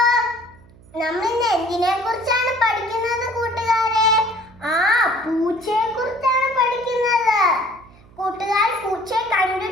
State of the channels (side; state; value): right; noise; hum, 25 dB below the sound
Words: നമ്മൾ ഇന്ന് എന്തിനെ കുറിച്ചാണ് പഠിക്കുന്നത് കൂട്ടുകാരെ? പൂച്ചയെ കുറിച്ചാണ് പഠിക്കുന്നത്. കൂട്ടുകാർ പൂച്ചയെ